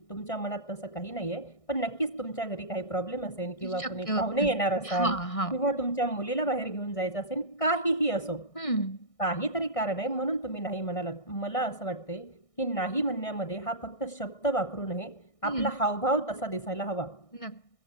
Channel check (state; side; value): late; right; 1.6 ms